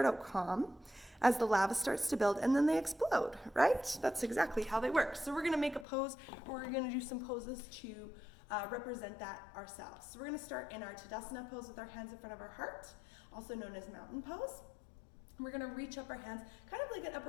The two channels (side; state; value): right; drops out; at 5.9 s